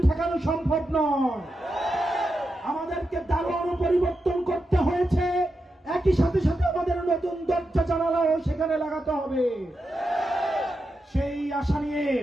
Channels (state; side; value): normal; both; correlation 0.88